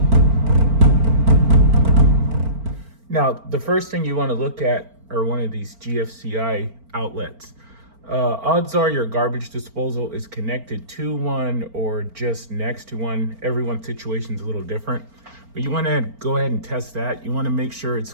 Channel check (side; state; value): left; late; 4.4 ms